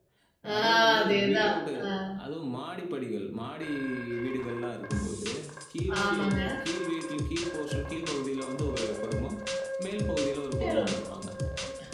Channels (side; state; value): both; identical; correlation 1.00